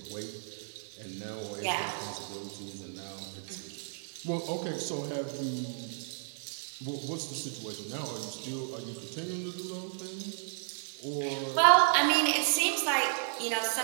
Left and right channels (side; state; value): left; silent; digital silence